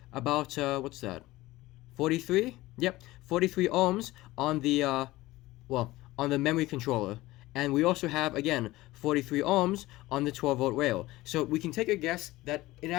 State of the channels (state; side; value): quieter; right; 18.3 dB